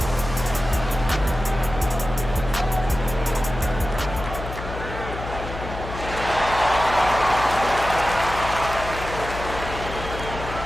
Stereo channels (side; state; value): left; noise; hum, 9 dB below the sound